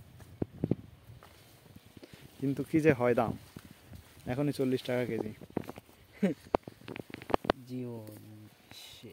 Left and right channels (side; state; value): both; identical; correlation 1.00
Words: কিন্তু কি যে হয় দাম, এখনই 40 টাকা কেজি। জীবন